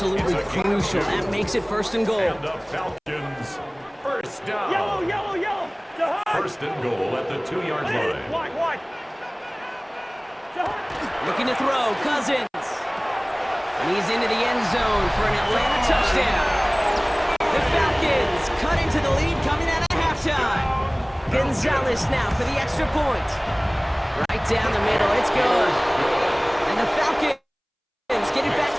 crucial. That makes it 1st and goal. And the Falcons, 1st down. Yellow. 1st and goal at the 2-yard line. White. Looking to throw, Cousins. And he's into the end zone for an Atlanta touchdown. The Falcons cut into the lead coming out of halftime. Gonzalez now for the extra point. Right down the middle, it's good. And the Falcons get it back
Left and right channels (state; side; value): identical; both; correlation 1.00